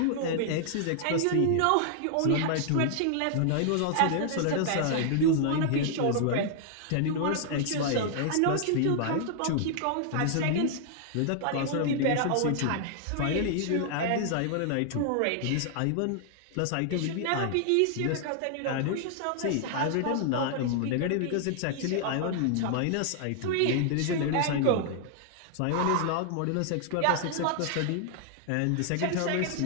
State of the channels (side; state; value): both; different; correlation 0.00